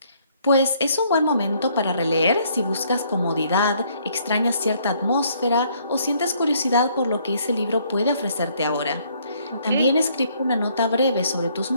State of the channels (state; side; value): inverted; both; correlation -0.66